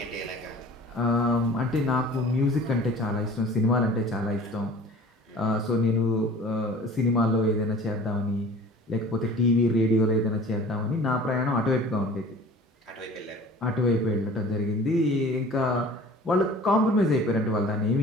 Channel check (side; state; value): both; normal; correlation 0.45